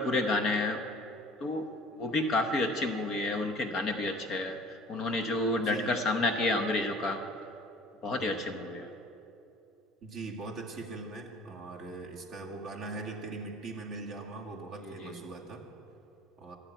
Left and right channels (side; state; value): both; normal; correlation 0.48